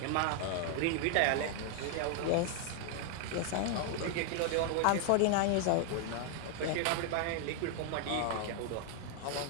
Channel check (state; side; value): different; both; correlation 0.00